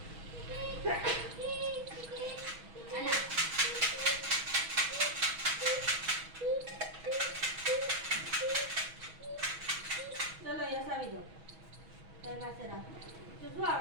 ચલો યસ આવી જાઓ તારી પાસે રાખો તો શું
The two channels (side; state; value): left; late; 6.2 ms